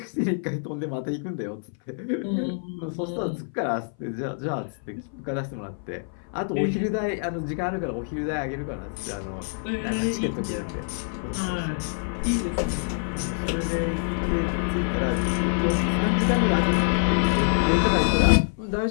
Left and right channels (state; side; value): silent; right; 58 dB below the other